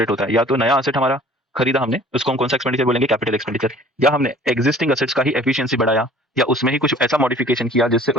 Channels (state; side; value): normal; both; correlation 0.50